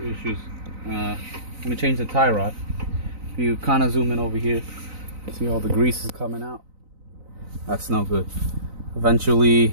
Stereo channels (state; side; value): late; left; 3.9 ms